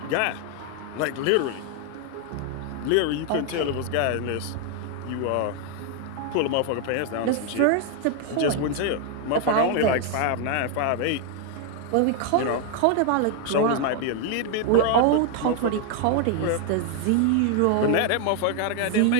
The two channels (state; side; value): different; both; correlation 0.01